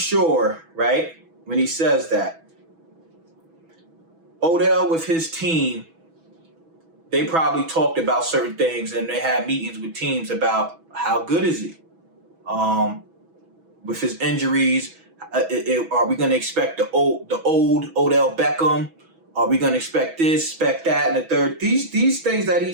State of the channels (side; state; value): left; late; 6.1 ms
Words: right, when he says that, Odell with his team, they probably talked about certain things and they had meetings with teams about how good is he? With his injuries, are we going to expect the old Odell Beckham? Are we going to expect this, expect that, and the third? These things that he